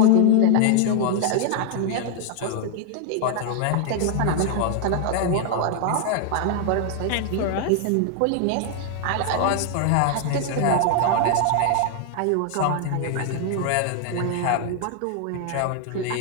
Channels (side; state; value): both; different; correlation 0.00